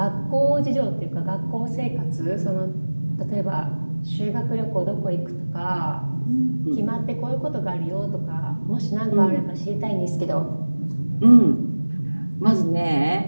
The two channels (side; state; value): both; inverted; correlation -1.00